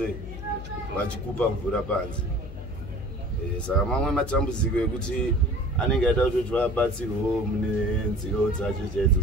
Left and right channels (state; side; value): noise; left; hum, 10 dB below the sound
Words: vachikupa mvura panze saka mamwe matambudziko ekuti anenge aida kutoti vabatsirwewo mune nziro dzacho chaidzo